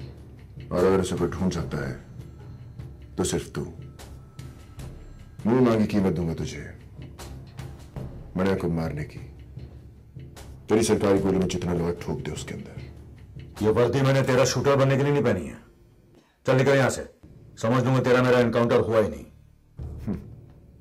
और अगर उसे कोई ढूंढ सकता है तो सिर्फ तू। मुंह मांगी कीमत दूंगा तुझे मने को मारने की। तेरी सरकारी गोली में जितना लोहा ठोक दे उसके अंदर। ये वर्दी मैंने तेरा शूटर बनने के लिए नहीं पहनी है। चल निकल यहां से, समझ लूंगा तेरा मेरा एनकाउंटर हुआ ही नहीं।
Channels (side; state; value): both; identical; correlation 1.00